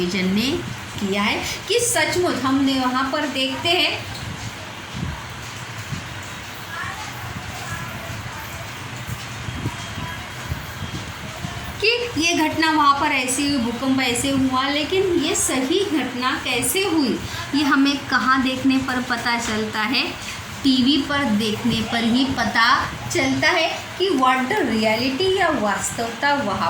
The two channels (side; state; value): both; identical; correlation 1.00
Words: ने किया है कि सचमुच हमने वहाँ पर देखते हैं कि ये घटना वहाँ पर ऐसी हुई, भूकंप ऐसे हुआ, लेकिन ये सही घटना कैसे हुई ये हमें कहाँ देखने पर पता चलता है? टीवी पर देखने पर ही पता चलता है कि व्हाट द रियलिटी या वास्तवता वहाँ